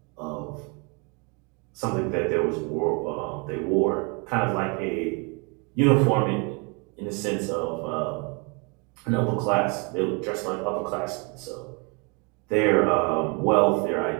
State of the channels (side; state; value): left; quieter; 31.7 dB